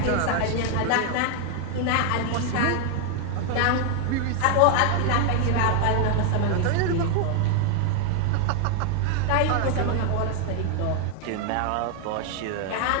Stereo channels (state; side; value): different; both; correlation 0.00